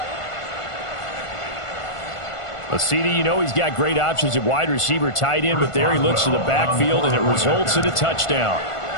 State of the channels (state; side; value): late; right; 1.5 ms